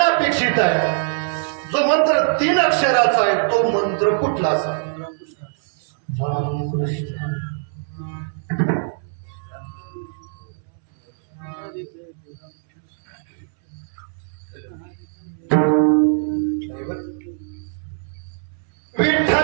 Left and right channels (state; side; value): silent; left; 64 dB below the other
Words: अपेक्षित आहे, जो मंत्र 3 अक्षराचा आहे, तो मंत्र कुठला असा?